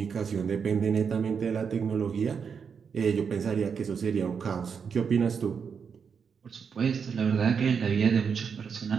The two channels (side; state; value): left; quieter; 6.4 dB